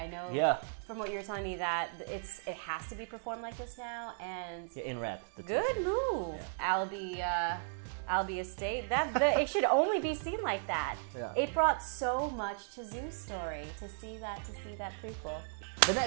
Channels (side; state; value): left; silent; digital silence